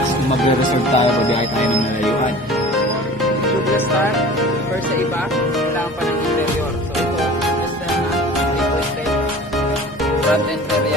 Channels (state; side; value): normal; both; correlation 0.42